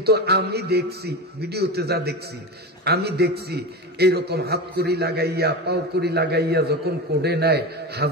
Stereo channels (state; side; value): normal; both; correlation 0.23